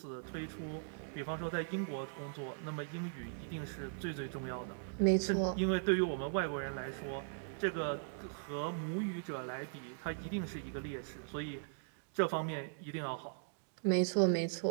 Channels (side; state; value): left; silent; digital silence